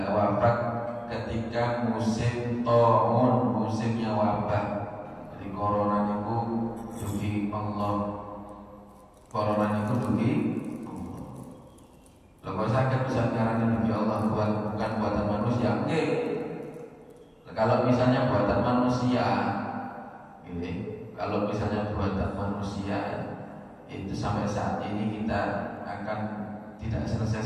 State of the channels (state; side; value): identical; both; correlation 1.00